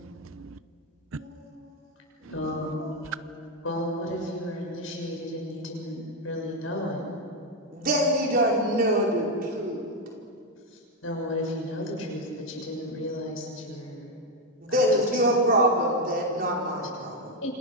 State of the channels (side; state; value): both; normal; correlation 0.06